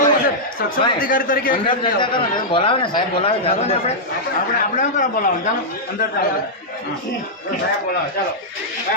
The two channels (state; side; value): normal; both; correlation -0.08